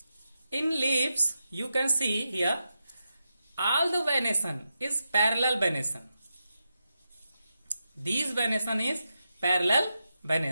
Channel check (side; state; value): both; inverted; correlation -0.88